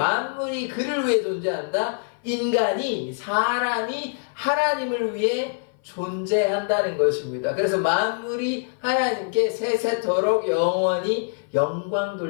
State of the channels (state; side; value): silent; right; 58 dB below the other